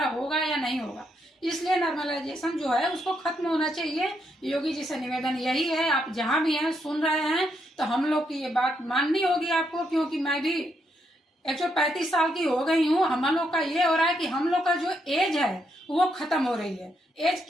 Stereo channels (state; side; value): normal; both; correlation 0.78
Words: होगा या नहीं होगा। इसलिए नॉर्मलाइजेशन जो है उसको खत्म होना चाहिए। योगी जी से निवेदन यही है, आप जहां भी हैं सुन रहे हैं तो हम लोग की ये बात माननी होगी आपको, क्योंकि मैं भी 135 साल की हो गई हूँ। हम लोग का ये हो रहा है कि हम लोग का जो एज है वो खत्म हो रही है। एज